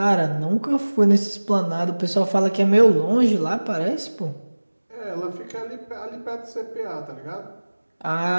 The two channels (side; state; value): both; inverted; correlation -1.00